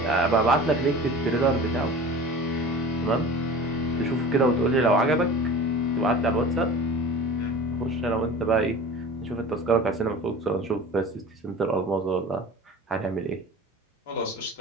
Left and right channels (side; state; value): both; normal; correlation 0.38